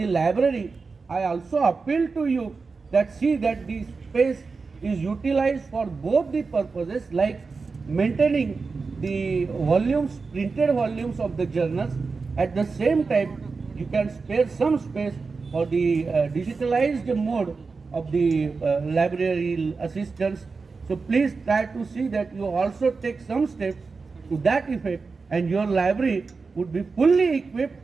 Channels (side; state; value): left; quieter; 4.5 dB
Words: library, I also appeal to you that see that the space is utilized for both the purposes, like maintaining the volumes, printed volumes of the journals. At the same time, you can spare some space for the digitalized mode of the library assistance. So please try to see that you also take some steps to that effect, and your library would be fully equipped